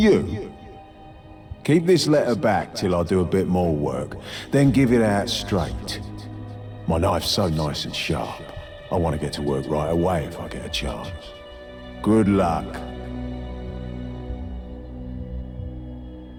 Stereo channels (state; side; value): identical; both; correlation 1.00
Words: Keep this letter back till I do a bit more work, then give it out straight. My knife's so nice and sharp, I want to get to work right away if I get a chance. Good luck.